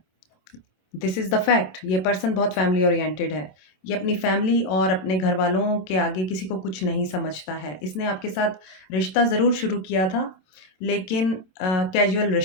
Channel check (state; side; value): late; right; 27 ms